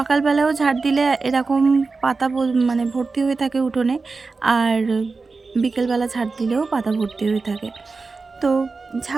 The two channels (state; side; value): quieter; left; 4.1 dB